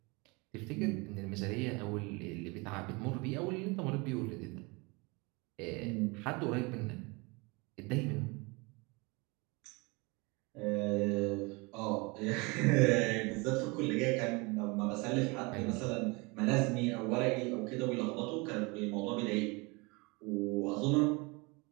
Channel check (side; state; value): left; quieter; 27.3 dB